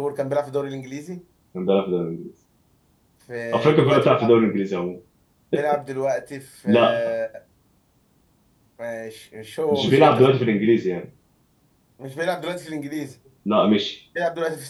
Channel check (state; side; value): identical; both; correlation 1.00